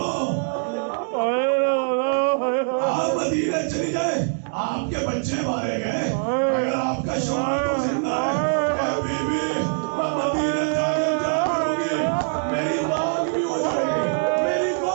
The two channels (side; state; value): left; silent; digital silence